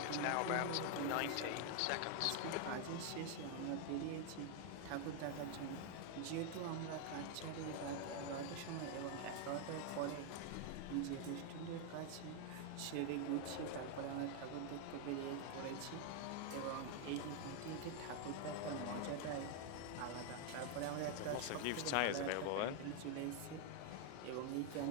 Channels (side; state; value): both; different; correlation 0.00